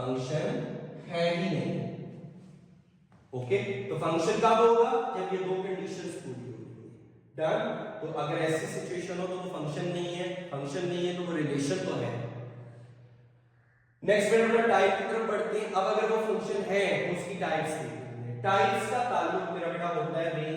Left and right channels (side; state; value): both; identical; correlation 1.00